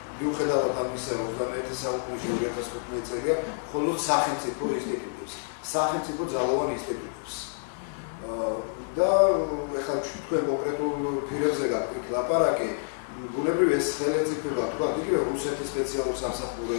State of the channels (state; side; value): silent; right; digital silence